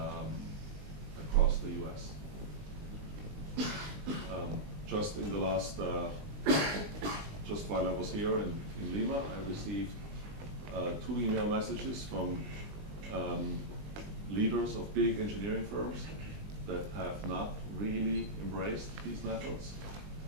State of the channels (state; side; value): late; left; 19 ms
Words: across the US. Just in the last, just while I was here in Lima, I received 2 email messages from leaders of big engineering firms that have not really embraced these methods